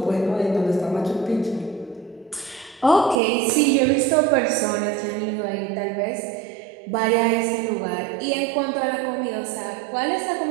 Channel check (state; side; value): drops out; left; at 3.2 s